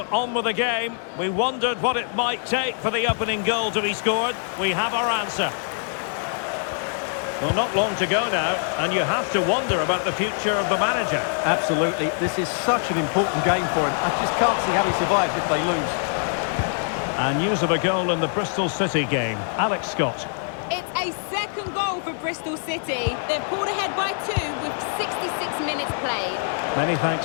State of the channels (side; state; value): right; silent; 63 dB below the other